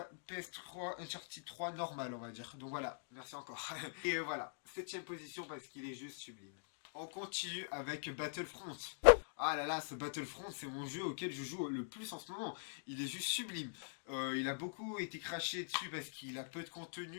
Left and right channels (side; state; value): right; silent; digital silence